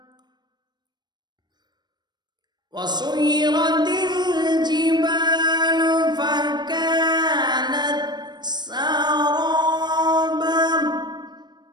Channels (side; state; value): left; late; 0.21 ms